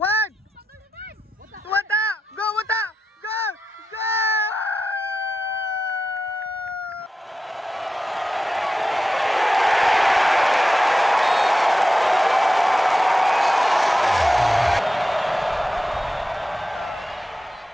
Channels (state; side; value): normal; both; correlation 0.90